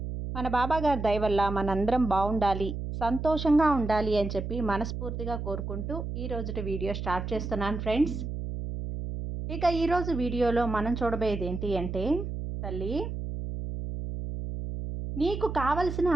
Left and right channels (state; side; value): noise; right; hum, 5 dB below the sound